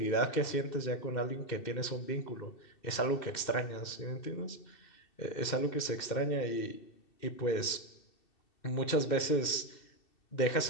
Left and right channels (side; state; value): right; late; 2.7 ms